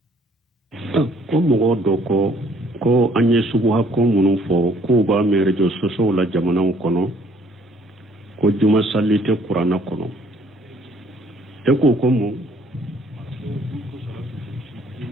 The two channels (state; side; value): normal; both; correlation 0.61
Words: ko mo do ko anye subuha ko munu fo ko ba mere jo soso la jamana kono ko juma sallite qur'ana kono te ko mo